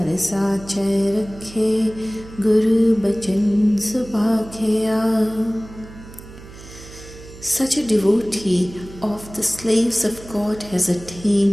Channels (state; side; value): noise; right; hum, 17 dB below the sound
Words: साचै रखे गुरु बचन सुभाखिया. Such a devotee of the slaves of God has